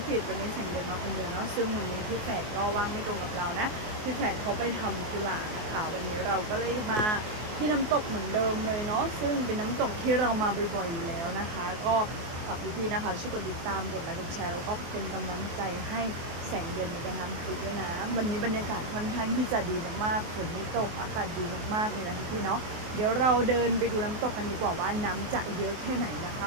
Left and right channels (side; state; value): left; late; 24 ms